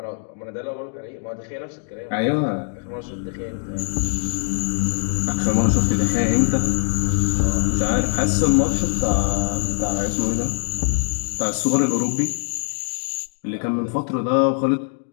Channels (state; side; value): silent; right; digital silence